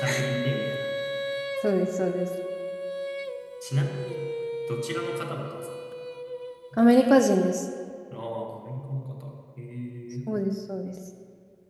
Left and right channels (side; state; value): both; identical; correlation 1.00